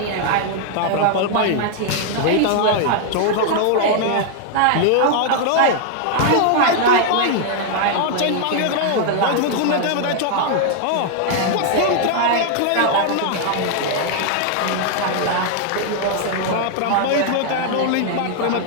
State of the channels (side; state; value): both; different; correlation 0.00